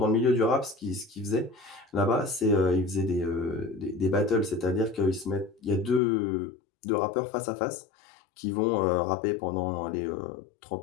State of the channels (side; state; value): right; drops out; at 6.0 s